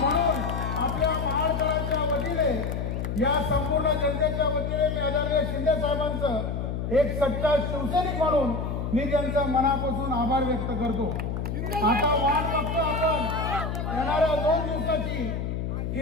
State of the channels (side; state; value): left; noise; hum, 3 dB below the sound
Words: म्हणून आपल्या महाराष्ट्राच्या वतीने, या संपूर्ण जनतेच्या वतीने मी आदरणीय शिंदे साहेबांचं एक सच्चा शिवसैनिक म्हणून मी त्यांचा मनापासून आभार व्यक्त करतो. आता वाट बघतो आपण येणाऱ्या 2 दिवसाची